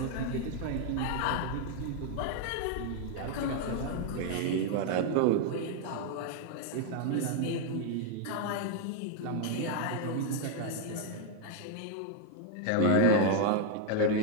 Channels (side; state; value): both; different; correlation 0.01